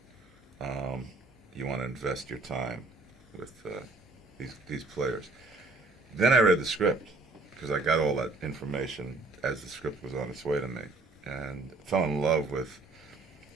You want to invest your time with these players. Then I read the script because I got all that information as the script was on its way to me, and fell in love with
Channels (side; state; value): left; quieter; 3.4 dB